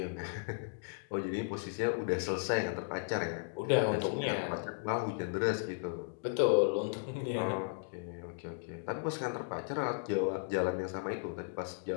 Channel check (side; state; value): right; silent; digital silence